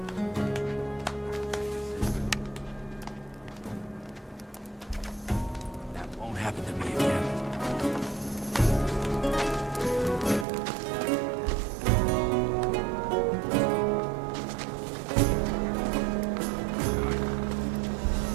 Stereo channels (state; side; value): drops out; left; at 10.5 s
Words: That won't happen to me again.